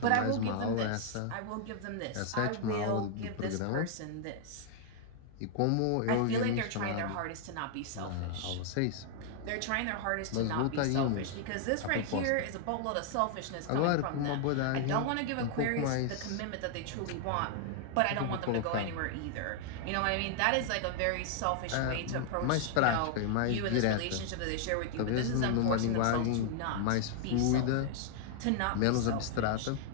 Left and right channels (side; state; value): both; different; correlation 0.00